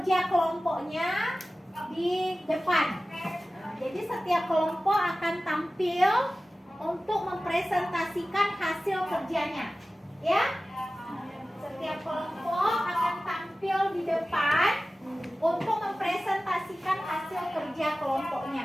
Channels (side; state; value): both; normal; correlation 0.96